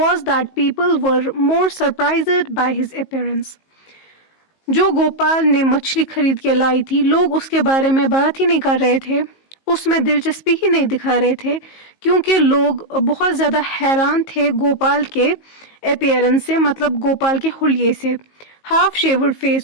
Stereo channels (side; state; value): right; late; 19 ms